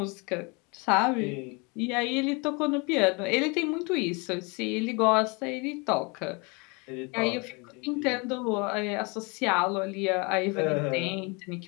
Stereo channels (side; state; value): right; quieter; 29.9 dB